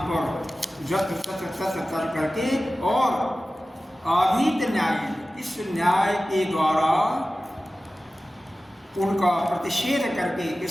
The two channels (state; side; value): normal; both; correlation 0.96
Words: पर जत्र तत्र तत्र कर करके और अभीत न्याय, इस न्याय के द्वारा उनका प्रतिषेध करके,